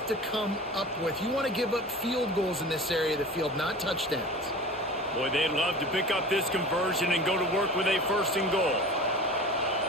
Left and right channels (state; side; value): normal; both; correlation 0.37